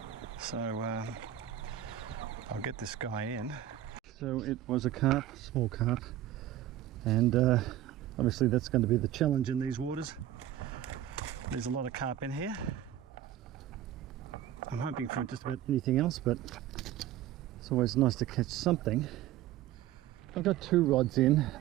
so I'll get this guy in. So it was a carp, small carp, and obviously that's going to be the challenge in these waters. There's a lot of carp in here. I'm hoping for just about anything else, but it's always nice to catch something. I've got two rods in.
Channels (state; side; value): quieter; left; 12.3 dB